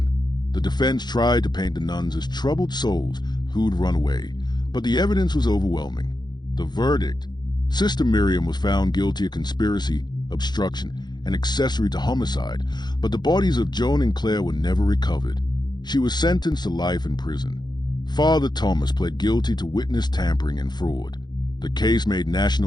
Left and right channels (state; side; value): late; right; 0.21 ms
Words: The defense tried to paint the nuns as troubled souls who'd run away, but the evidence was overwhelming. The verdict: Sister Miriam was found guilty of conspiracy, obstruction, and accessory to homicide, but the bodies of Joan and Claire were never recovered. She was sentenced to life in prison. Father Thomas pled guilty to witness tampering and fraud. The case made